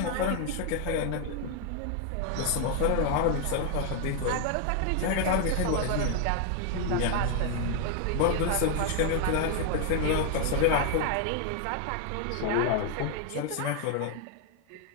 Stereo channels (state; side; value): different; both; correlation 0.00